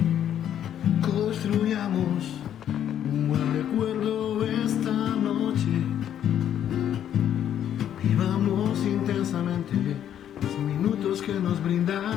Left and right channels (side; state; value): right; quieter; 10.2 dB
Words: Construyamos un buen recuerdo esta noche. Vivamos intensamente los minutos que nos brinda